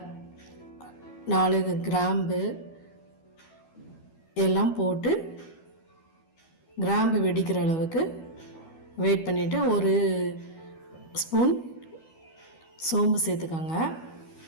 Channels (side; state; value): right; late; 12 ms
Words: 4 கிராம்பு எல்லாம் போட்டு கிராம்பு வெடிக்கிற அளவுக்கு வெயிட் பண்ணிவிட்டு ஒரு ஸ்பூன் சோம்பு சேர்த்துக்கோங்க.